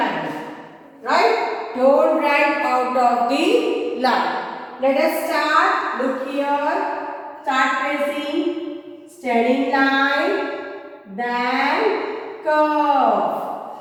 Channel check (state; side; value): identical; both; correlation 1.00